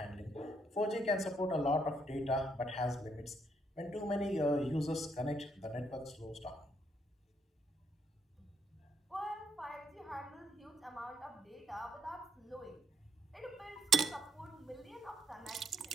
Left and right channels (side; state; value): both; normal; correlation 0.71